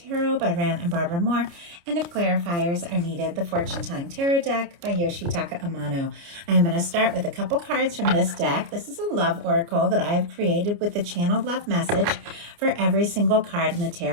by Rand and Barbara Moore, and if clarifiers are needed, the Fortune Telling Tarot deck by Yoshitaka Amano. I am going to start with a couple cards from this deck. This is a love oracle that I have created with the channeled love message for every single card in the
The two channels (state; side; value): late; left; 29 ms